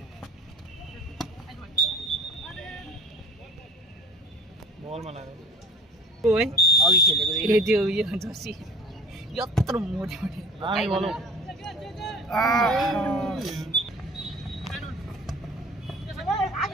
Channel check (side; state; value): both; normal; correlation 0.47